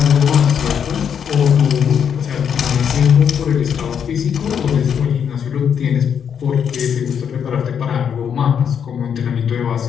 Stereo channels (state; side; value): quieter; right; 7.8 dB